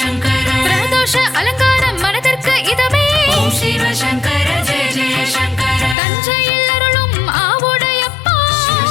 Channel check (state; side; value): drops out; right; at 6.0 s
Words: சங்கர பிரதோஷ அலங்காரம் மனதிற்கு இதமே ஓம் சிவ சங்கர ஜெய ஜெய சங்கர தஞ்சையில் அருளும் ஆவுடையப்பா சிவ